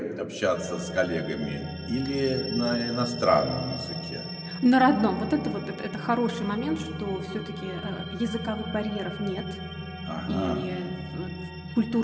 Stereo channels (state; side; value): identical; both; correlation 1.00